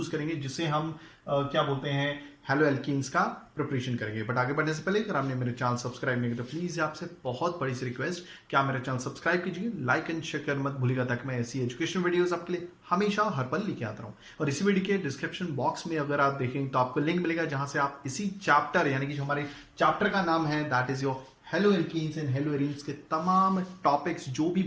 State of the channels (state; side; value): identical; both; correlation 1.00